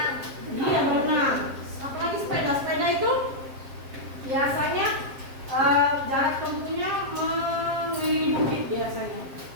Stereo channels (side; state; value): left; late; 7.5 ms